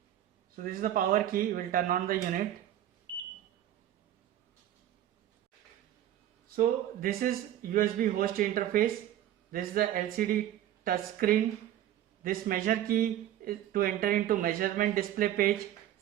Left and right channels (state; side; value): quieter; left; 12.1 dB